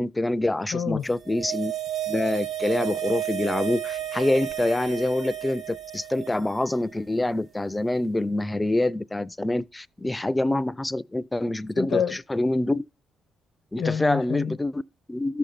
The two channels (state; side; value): normal; both; correlation 0.91